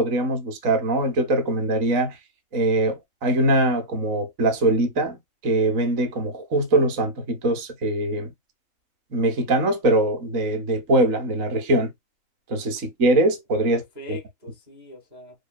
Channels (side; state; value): left; late; 3.9 ms